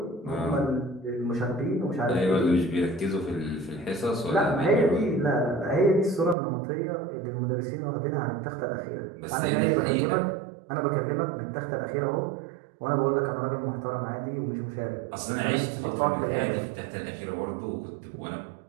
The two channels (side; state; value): left; drops out; at 6.4 s